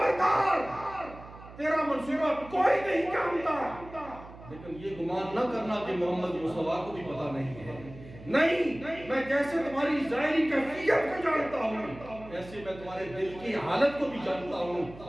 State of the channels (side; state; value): right; noise; hum, 17 dB below the sound